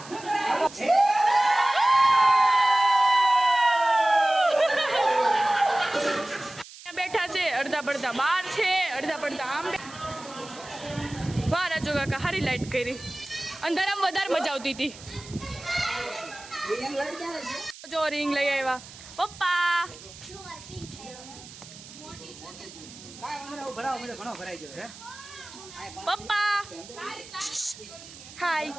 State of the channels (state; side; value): noise; right; hiss, 17 dB below the sound